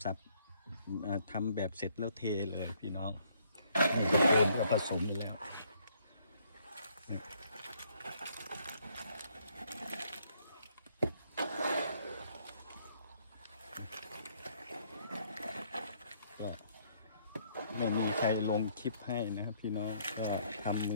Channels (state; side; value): inverted; both; correlation -0.67